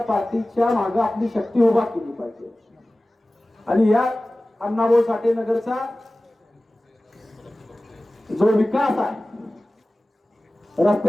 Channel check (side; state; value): both; normal; correlation 0.97